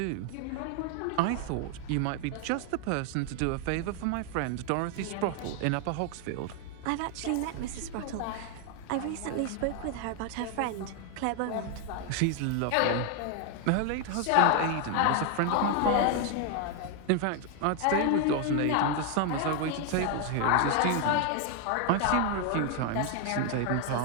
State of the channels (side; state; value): both; different; correlation 0.00